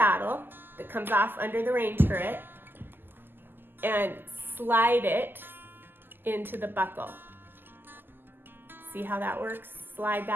that comes off under the rein turret and slide it into the buckle. See how that works? Slide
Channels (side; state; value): left; late; 0.094 ms